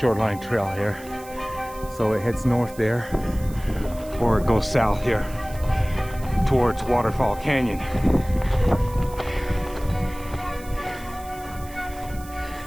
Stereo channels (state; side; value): noise; right; hiss, 19 dB below the sound